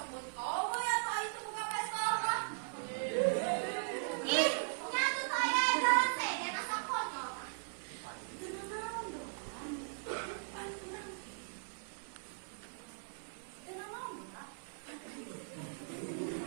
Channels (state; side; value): silent; left; 52 dB below the other